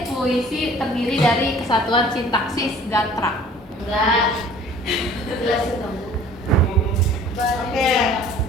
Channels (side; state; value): both; normal; correlation 0.50